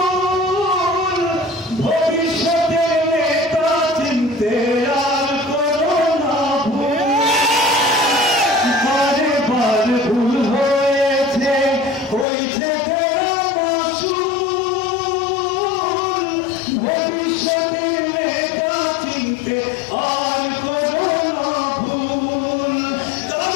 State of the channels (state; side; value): drops out; right; at 12.2 s